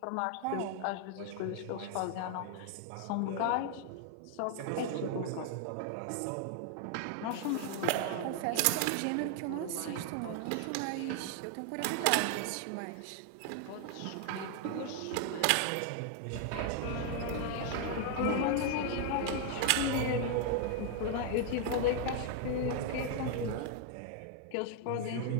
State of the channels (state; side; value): different; both; correlation 0.00